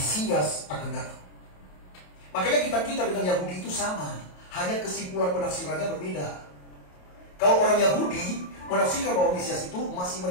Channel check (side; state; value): right; late; 28 ms